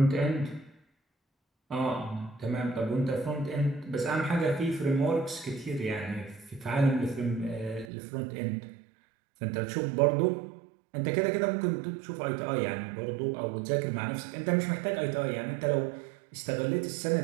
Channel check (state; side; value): drops out; left; at 7.9 s